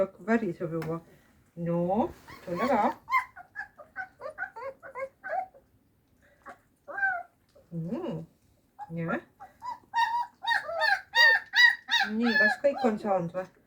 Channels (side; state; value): both; identical; correlation 1.00